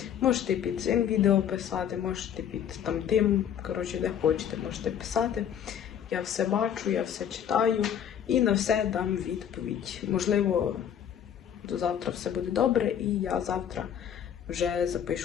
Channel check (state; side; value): quieter; right; 9.1 dB